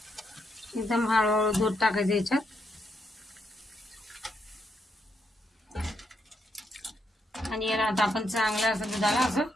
एकदम हळूहळू दूध टाकायचं याच्यात। आणि याला आता आपण चांगलं असं दुधाला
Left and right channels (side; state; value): both; normal; correlation 0.79